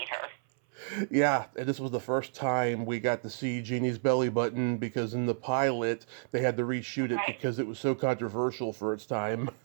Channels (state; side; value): silent; left; 57 dB below the other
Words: her. Yeah, and this was the first time we got to see Jeannie's belly button because in the pilot they had to reshoot it because it was so controversial for its time.